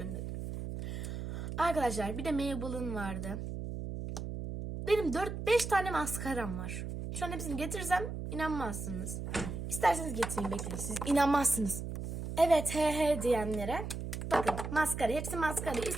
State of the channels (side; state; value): right; noise; hum, 6 dB below the sound